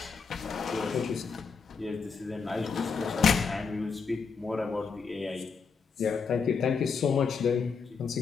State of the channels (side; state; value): right; quieter; 5.5 dB